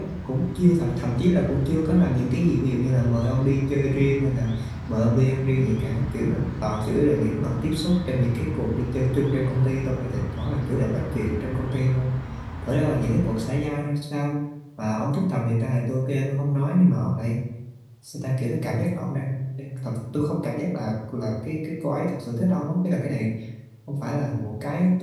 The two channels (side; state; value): both; identical; correlation 1.00